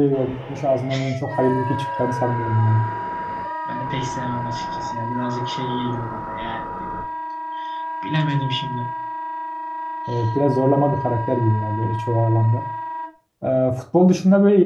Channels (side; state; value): both; identical; correlation 1.00